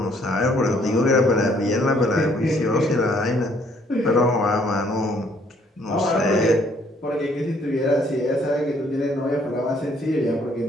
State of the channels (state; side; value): normal; both; correlation 0.64